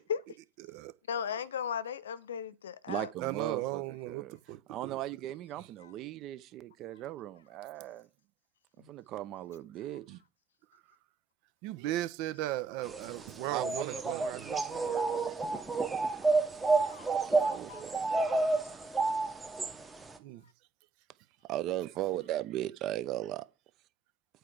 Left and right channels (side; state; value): left; quieter; 4.1 dB